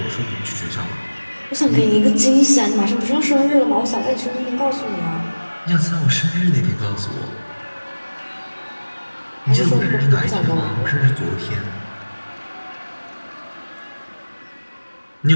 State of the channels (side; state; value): both; inverted; correlation -1.00